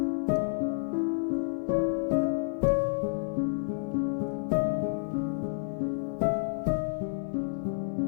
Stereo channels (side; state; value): right; silent; digital silence